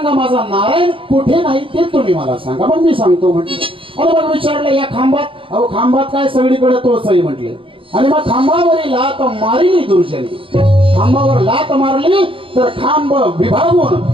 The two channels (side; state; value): left; late; 0.25 ms